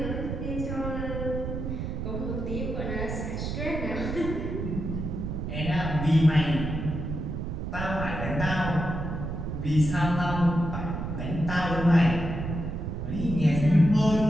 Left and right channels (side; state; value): right; noise; rumble, 4 dB below the sound